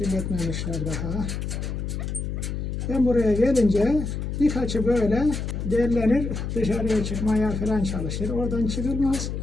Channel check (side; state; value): left; noise; hum, 4 dB below the sound